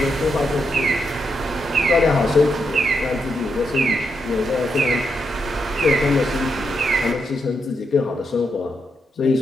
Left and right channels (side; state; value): both; normal; correlation 0.82